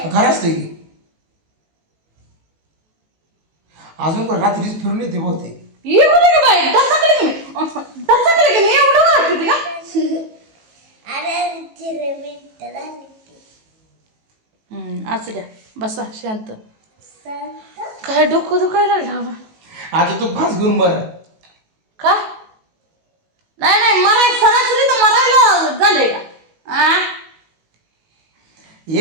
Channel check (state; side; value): late; left; 18 ms